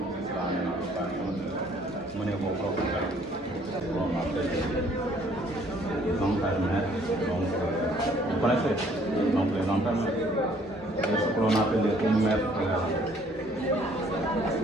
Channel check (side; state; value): both; normal; correlation 0.61